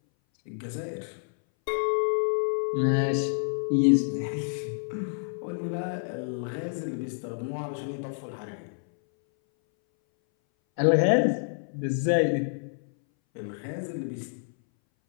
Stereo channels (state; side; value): silent; right; 59 dB below the other